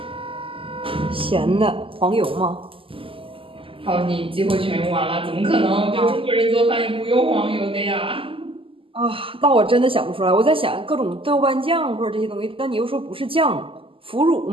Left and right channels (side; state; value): left; late; 0.26 ms